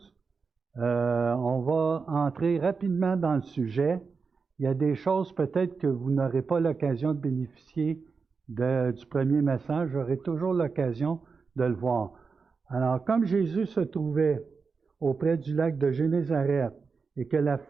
On va entrer rapidement dans le sujet. Il y a des choses peut-être que vous n'aurez pas l'occasion de bénéficier du premier message. J'aurai toujours l'occasion de le voir. Alors, comme Jésus se trouvait auprès du lac de Génézareth et que la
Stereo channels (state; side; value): quieter; left; 5.0 dB